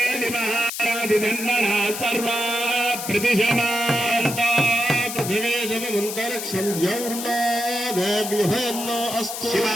सर्वा प्रतिशमान्ता पृथिवे समन्तरिक्षं द्यौर्नादेव्यभयन्नो अस्तु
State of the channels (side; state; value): left; noise; hiss, 6 dB below the sound